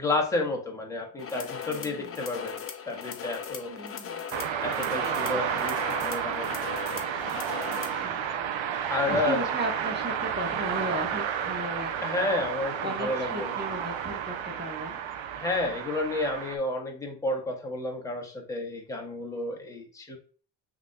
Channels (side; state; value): both; normal; correlation 0.13